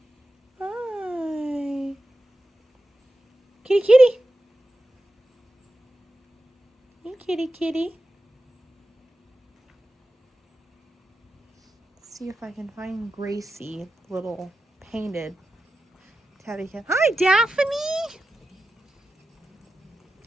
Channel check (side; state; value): both; normal; correlation 0.91